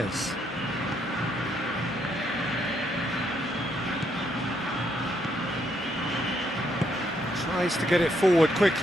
Tries to get it forward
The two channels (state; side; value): normal; both; correlation 0.74